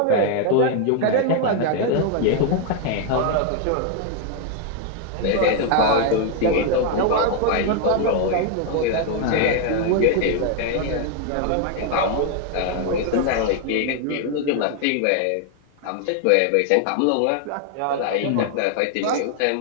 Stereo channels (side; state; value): both; different; correlation 0.00